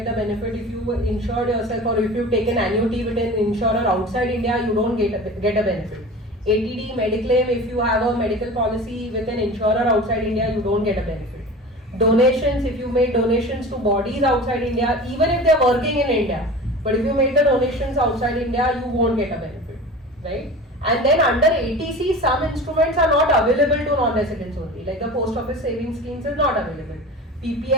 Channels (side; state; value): both; normal; correlation 0.35